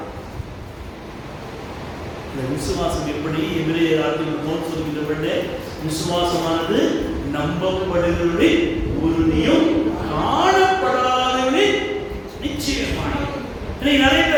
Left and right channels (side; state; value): both; identical; correlation 1.00